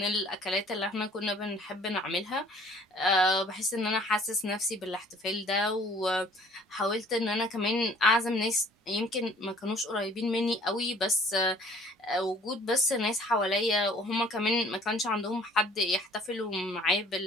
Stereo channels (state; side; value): normal; both; correlation 0.54